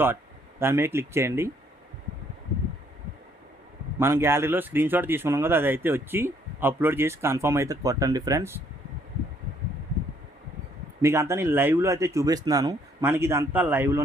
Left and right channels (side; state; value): both; normal; correlation 0.66